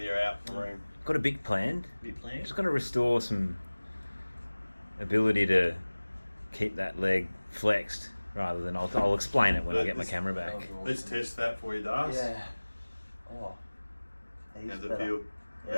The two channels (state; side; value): inverted; both; correlation -1.00